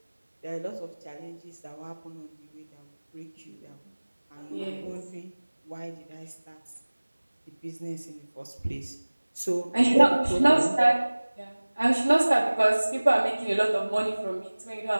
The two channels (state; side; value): inverted; both; correlation -1.00